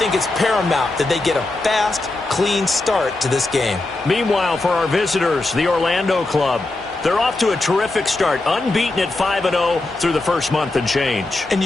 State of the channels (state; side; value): quieter; right; 3.0 dB